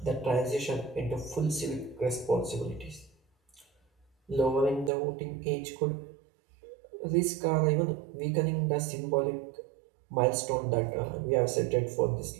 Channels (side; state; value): left; drops out; at 4.9 s